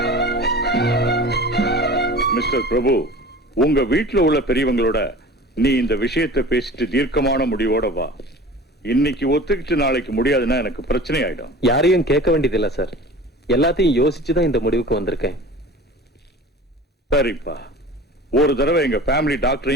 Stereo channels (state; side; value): normal; both; correlation 0.39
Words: மிஸ்டர் பிரபு, உங்க வீட்டுல உள்ள பெரியவங்களோட நீ இந்த விஷயத்தை பேசிட்டு தீர்க்கமான முடிவோட வா. இன்னைக்கு ஒத்துக்கிட்டு நாளைக்கு முடியாதுன்னா எனக்கு பிரச்சனை ஆயிடும். யாரையும் கேட்க வேண்டியது இல்ல சார், எல்லாத்தையும் யோசிச்சுதான் இந்த முடிவுக்கு வந்திருக்கேன். சரிப்பா, ஒரு தடவை எங்க ஃபேமிலி